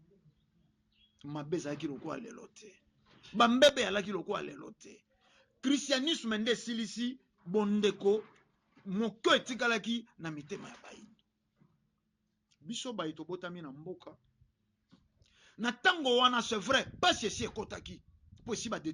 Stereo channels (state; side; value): identical; both; correlation 1.00